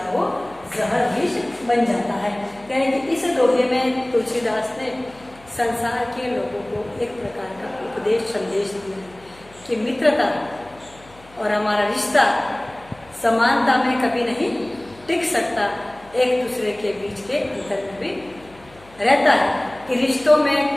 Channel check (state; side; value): noise; left; hum, 25 dB below the sound